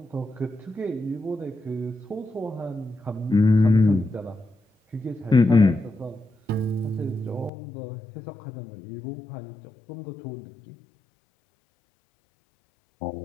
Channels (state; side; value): drops out; right; at 7.5 s